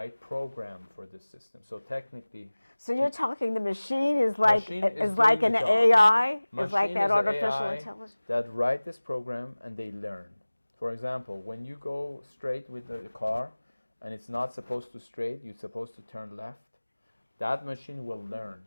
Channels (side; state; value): both; inverted; correlation -1.00